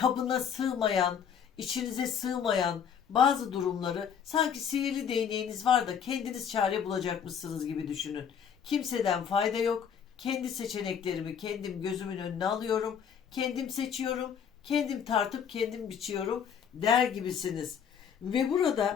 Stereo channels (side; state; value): right; quieter; 7.7 dB